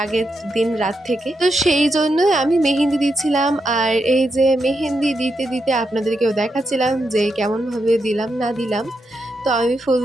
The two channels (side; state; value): both; normal; correlation 0.84